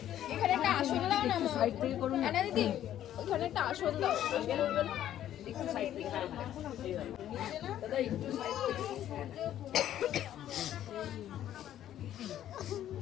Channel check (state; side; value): quieter; right; 11.6 dB